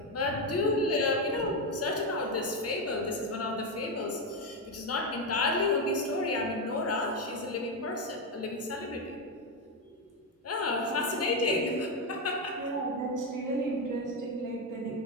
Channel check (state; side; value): normal; both; correlation 0.08